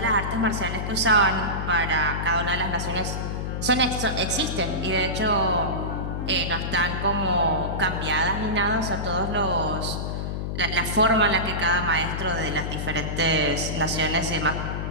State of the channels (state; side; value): noise; left; hum, 3 dB below the sound